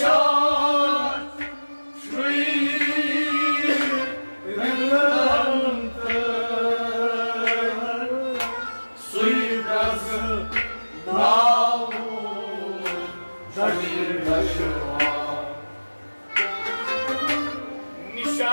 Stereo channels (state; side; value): inverted; both; correlation -1.00